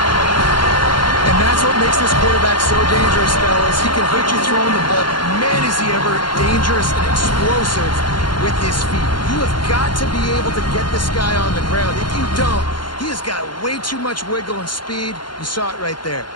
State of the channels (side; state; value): right; late; 0.71 ms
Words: And that's what makes this quarterback so dangerous, fellas. He can hurt you throwing the ball. Man, is he ever dangerous and explosive with his feet. You have got to be able to get this guy on the ground. If you don't, he has got way too much wiggle and speed. You saw it right there.